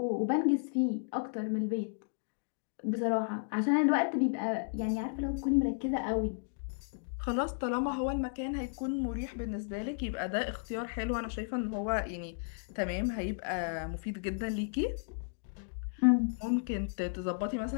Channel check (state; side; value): silent; right; digital silence